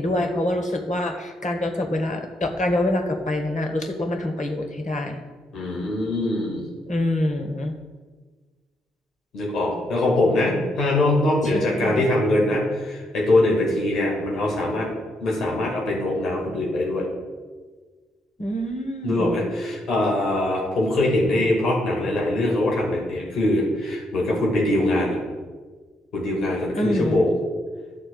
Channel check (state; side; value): normal; both; correlation 0.77